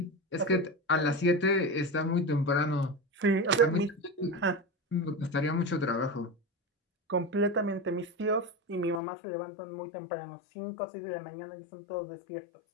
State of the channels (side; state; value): right; drops out; at 9.0 s